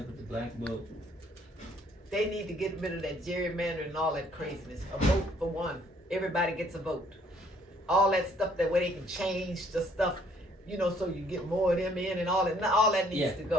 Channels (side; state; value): both; normal; correlation 0.63